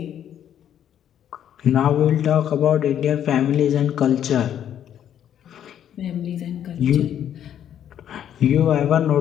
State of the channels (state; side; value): quieter; right; 10.0 dB